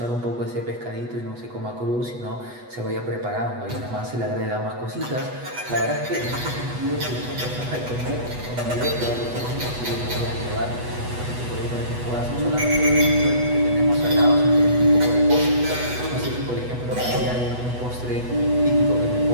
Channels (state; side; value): late; left; 8.1 ms